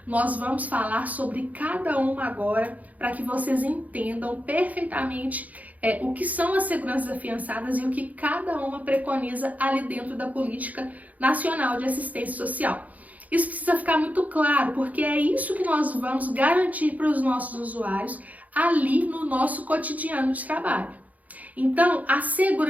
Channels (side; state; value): left; late; 0.076 ms